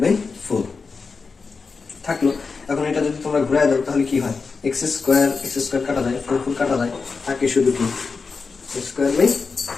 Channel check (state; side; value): quieter; right; 4.7 dB